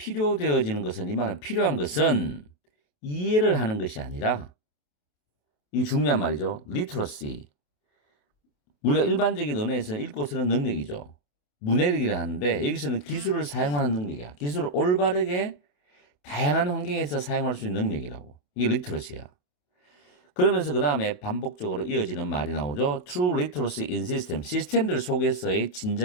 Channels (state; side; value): late; right; 28 ms